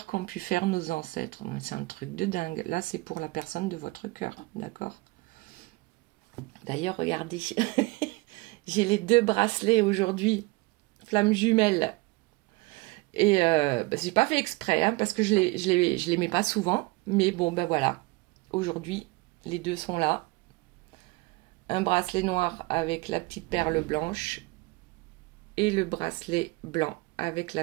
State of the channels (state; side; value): quieter; left; 24.1 dB